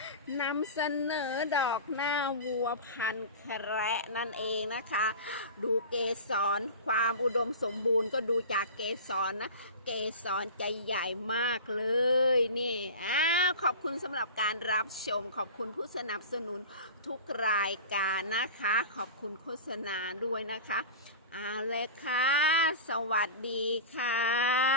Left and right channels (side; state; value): both; inverted; correlation -0.32